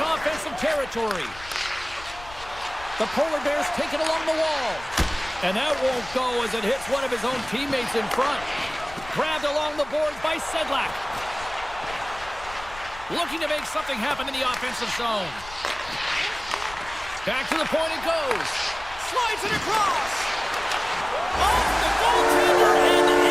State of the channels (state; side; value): noise; left; rumble, 18 dB below the sound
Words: offensive territory. The Polar Bears take it along the wall. And that won't go as it hits one of his own teammates in front. Grabbed along the boards by Sedlak. Looking to make something happen in the offensive zone. Back to the point it goes. Slides it across. Off the goaltender and